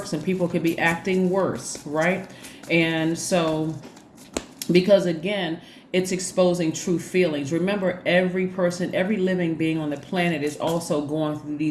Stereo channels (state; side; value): identical; both; correlation 1.00